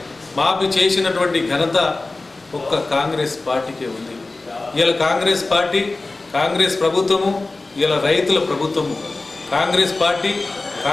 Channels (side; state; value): right; quieter; 3.3 dB